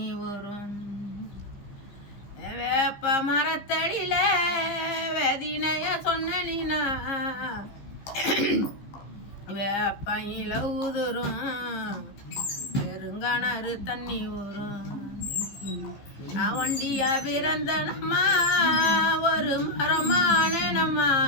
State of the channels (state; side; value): late; right; 15 ms